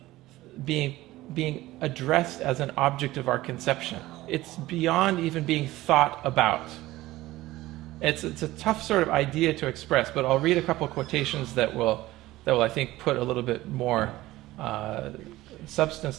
being addressed as an object of our conception. It's beyond even being thought about. It's a tough sort of idea to express, but I'll read a couple quotations that will I think put a little bit more substance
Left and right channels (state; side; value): quieter; left; 17.2 dB